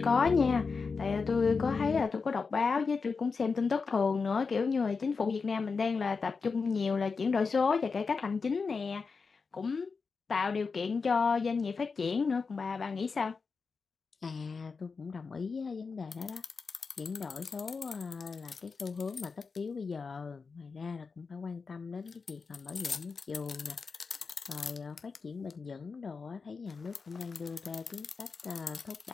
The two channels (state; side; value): quieter; right; 4.9 dB